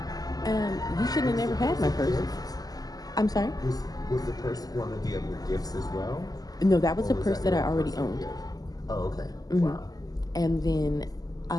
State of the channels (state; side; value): late; right; 0.18 ms